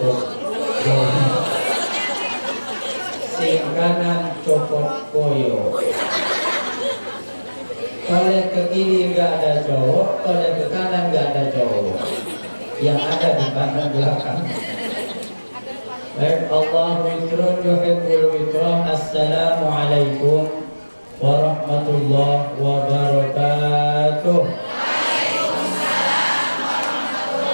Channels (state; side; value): inverted; both; correlation -1.00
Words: koyo, sing kanan copot koyo. Kalau ke kiri nggak ada cowok, kalau ke kanan nggak ada cowok. Yang ada di kanan belakang. Baik, Allahu witrun yuhibbul witron. Assalamualaikum warahmatullahi wabarakatuh.